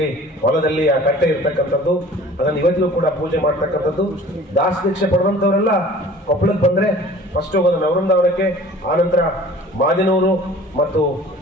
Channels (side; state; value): both; normal; correlation 0.47